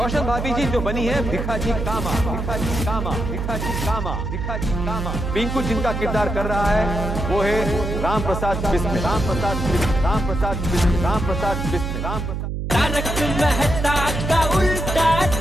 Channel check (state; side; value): noise; right; hum, 3 dB below the sound